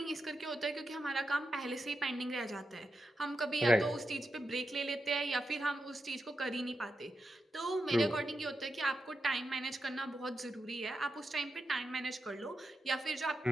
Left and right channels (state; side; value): normal; both; correlation 0.87